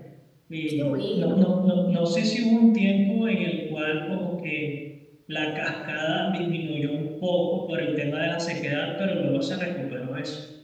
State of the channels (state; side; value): identical; both; correlation 1.00